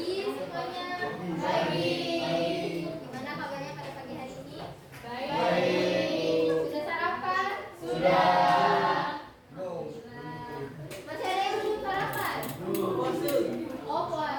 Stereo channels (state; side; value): identical; both; correlation 1.00